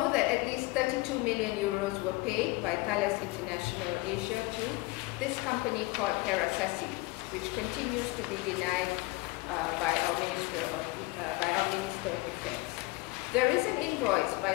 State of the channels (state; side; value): quieter; right; 22.6 dB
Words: that at least 32 million euros were paid by Thales International Asia to this company called Terasasi, which continues to be denied by our Minister of Defense. There is an invoice